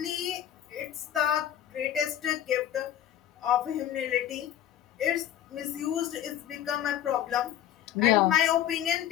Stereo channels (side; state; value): right; quieter; 11.1 dB